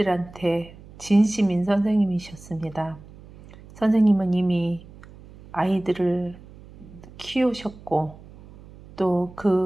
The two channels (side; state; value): right; noise; hum, 20 dB below the sound